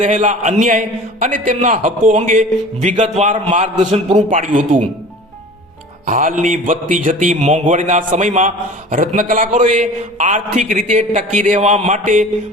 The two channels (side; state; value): both; normal; correlation 0.41